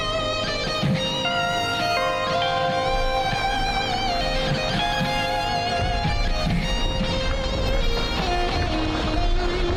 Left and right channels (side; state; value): both; identical; correlation 1.00